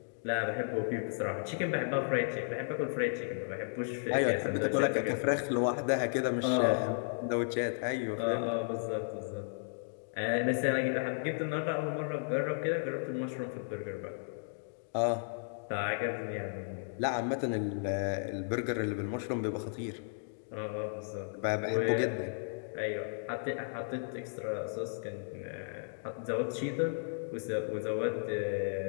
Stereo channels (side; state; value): right; silent; digital silence